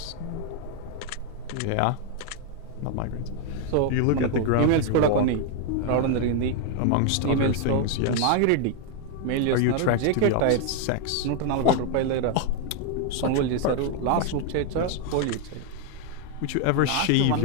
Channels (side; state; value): both; different; correlation 0.00